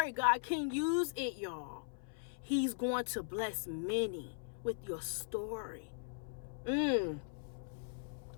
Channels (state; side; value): silent; right; 52 dB below the other